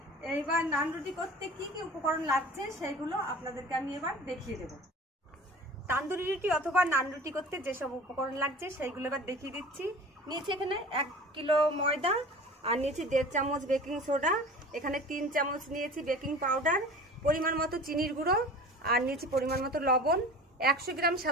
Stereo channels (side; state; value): both; normal; correlation 0.40